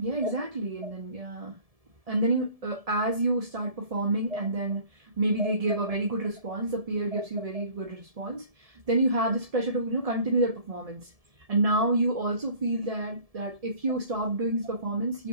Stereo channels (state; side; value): late; left; 1.7 ms